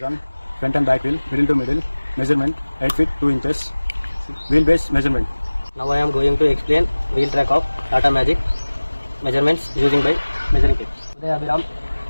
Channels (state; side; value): inverted; both; correlation -1.00